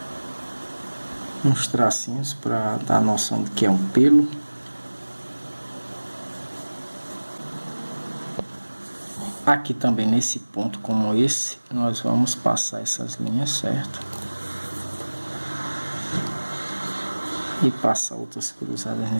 uns tracinhos para dar a noção de que é um pelo. Aqui também nesse ponto como esse, nós vamos passar essas linhas, certo? E passar outras cruzadas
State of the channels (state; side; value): inverted; both; correlation -1.00